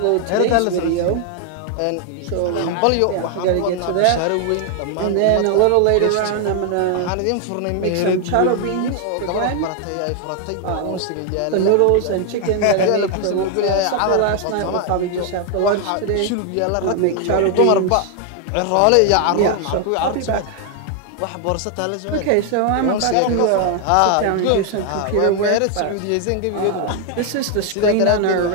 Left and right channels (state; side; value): different; both; correlation 0.00